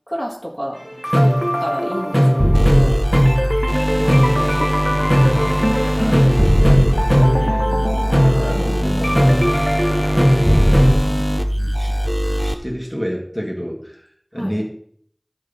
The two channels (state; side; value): identical; both; correlation 1.00